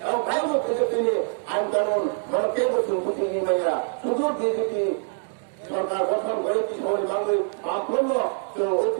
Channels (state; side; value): silent; left; digital silence